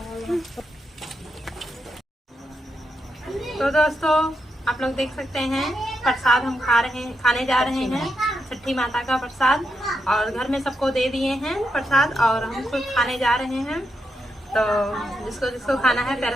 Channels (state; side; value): normal; both; correlation 0.83